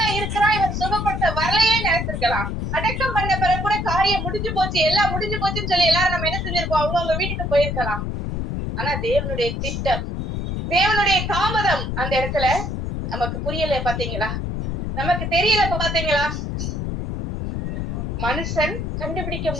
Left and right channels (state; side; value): noise; left; rumble, 3 dB below the sound